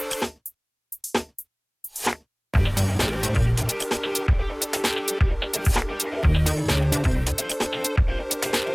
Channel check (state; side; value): identical; both; correlation 1.00